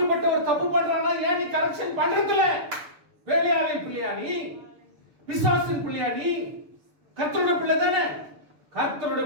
ஒரு தப்பு பண்றானா ஏன் நீ கரெக்ஷன் பண்றதுல? வேலையாளின் பிள்ளையா நீ? பிசாசின் பிள்ளையா நீ? கர்த்தருடைய பிள்ளை தானே. கர்த்தருடைய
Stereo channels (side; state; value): left; late; 6.9 ms